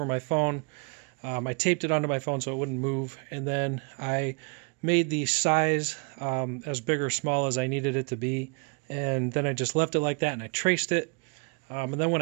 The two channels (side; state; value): left; quieter; 35.2 dB